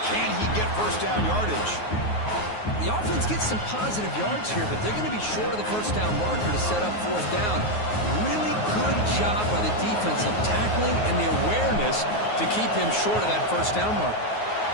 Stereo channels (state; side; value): late; right; 9.5 ms